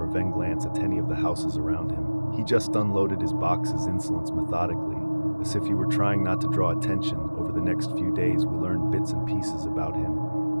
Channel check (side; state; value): both; inverted; correlation -1.00